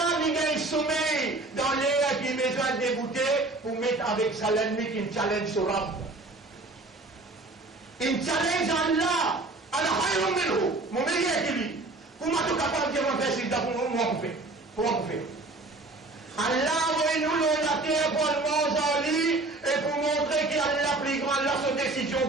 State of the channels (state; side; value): quieter; left; 3.1 dB